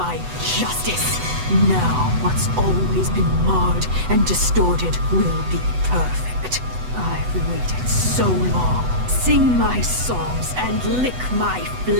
justice. Now, what's always been marred and distorted will be perfect. I've waited so long. Sing my songs and lick my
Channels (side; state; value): left; late; 8.0 ms